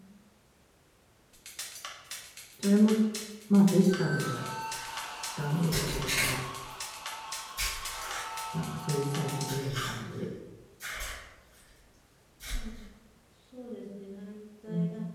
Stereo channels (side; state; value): both; identical; correlation 1.00